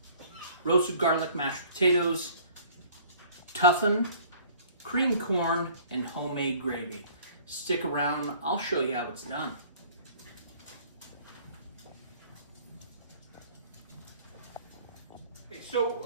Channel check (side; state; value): both; inverted; correlation -0.52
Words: roasted garlic mashed potatoes, toughen, creamed corn, and homemade gravy. Stick around, I'll show you how it's done. So,